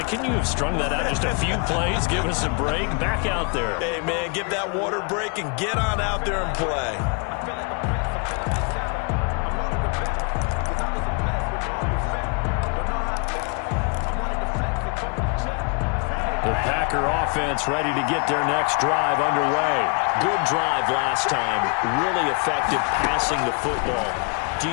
can you have strung that out just a few plays? Give us a break. Back out there. Hey, man, give that water break and get on out there and play. The Packer offense ready to get their next drive underway. Good drive last time. Really effective passing the football. Do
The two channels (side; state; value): right; quieter; 35.9 dB